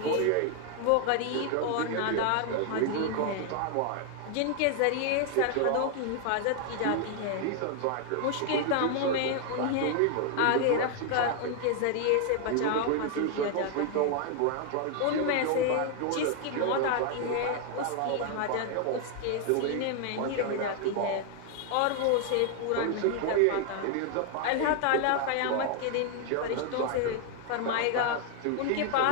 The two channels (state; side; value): different; both; correlation 0.00